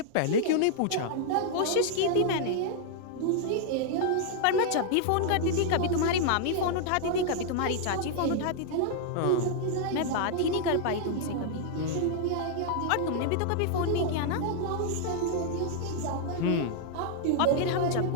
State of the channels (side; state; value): both; different; correlation 0.00